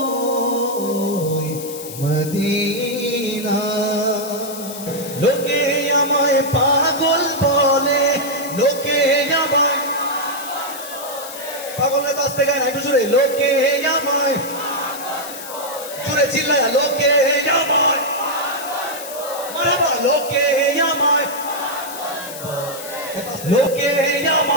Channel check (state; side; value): noise; left; hiss, 12 dB below the sound